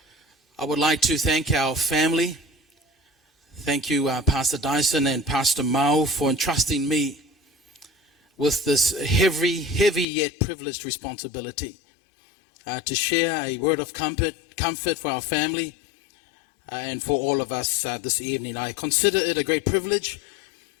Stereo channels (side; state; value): right; drops out; at 10.1 s